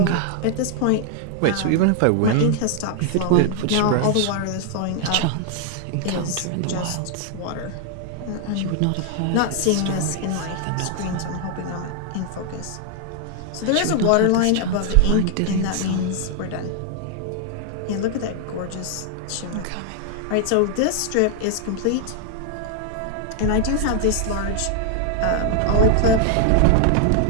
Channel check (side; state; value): both; different; correlation 0.00